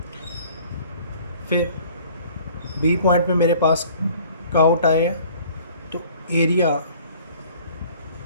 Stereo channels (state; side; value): inverted; both; correlation -0.52